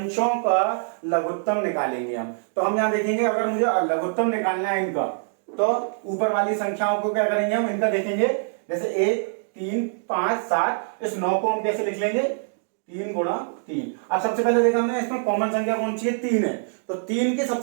का लघुत्तम निकालेंगे हम। तो हम यहाँ देखेंगे अगर मुझे लघुत्तम निकालना है इनका, तो ऊपर वाली संख्याओं को क्या करेंगे हम, इनका देखेंगे, जैसे 1, 3, 5, 7, इस 9 को हम कैसे लिख लेंगे, 3 गुणा 3। अब सबसे पहले देखा हमने इसमें कॉमन संख्या कौन सी है, 3 है, तो 3 की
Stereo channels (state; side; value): silent; left; digital silence